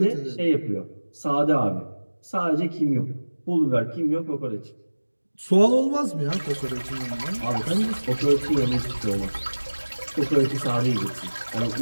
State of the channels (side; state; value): both; inverted; correlation -1.00